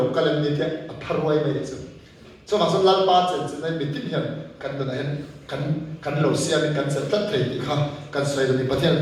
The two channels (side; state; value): both; identical; correlation 1.00